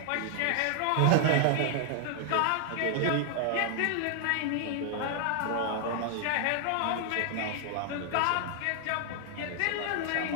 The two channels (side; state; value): both; different; correlation 0.00